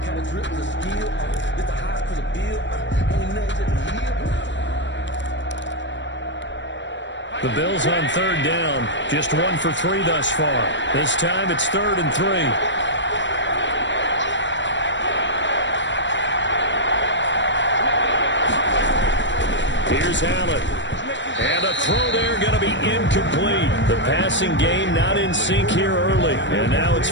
The Bills on third down. Just 1 for 3 thus far. This time it's 3rd and 3. Here's Allen. And a throw there going to be incomplete. The passing game not in sync here early. And now it's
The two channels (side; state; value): right; late; 0.53 ms